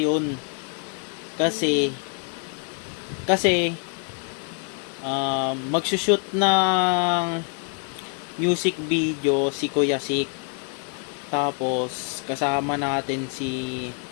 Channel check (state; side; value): quieter; right; 39.4 dB